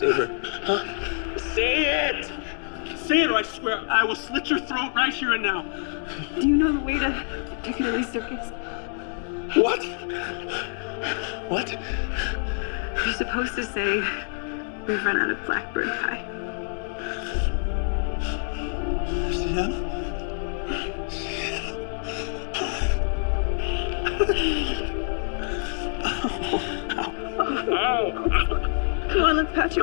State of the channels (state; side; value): silent; right; 61 dB below the other